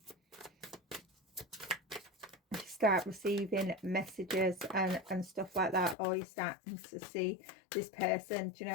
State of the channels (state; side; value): drops out; right; at 6.0 s